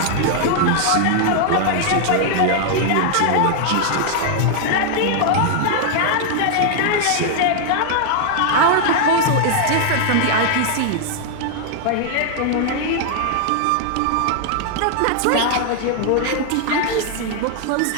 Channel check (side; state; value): both; different; correlation 0.00